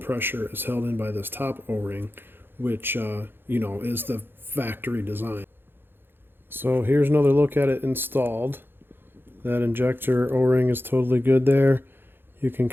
is held in by this top O-ring, which, is the factory design. So here's another look at it installed. That injector O-ring is totally good there. You can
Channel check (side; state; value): left; late; 0.10 ms